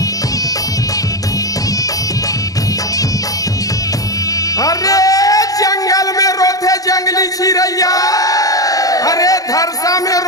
जंगली चिड़ैया, अरे धरसा में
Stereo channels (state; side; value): late; right; 0.17 ms